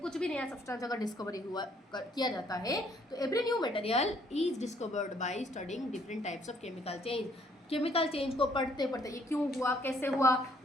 भी नया सब्सटेंस अगर डिस्कवरी किया जाता है तो every new material is discovered by studying different types of chemical change. Chemical change को पढ़ते पढ़ते, ये क्यों हुआ, कैसे हुआ,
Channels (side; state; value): both; normal; correlation 0.64